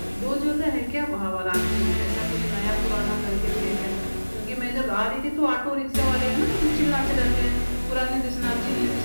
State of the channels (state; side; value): inverted; both; correlation -1.00